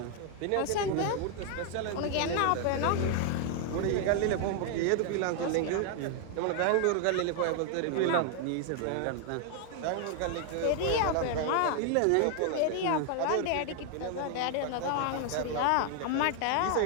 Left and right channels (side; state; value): both; different; correlation 0.00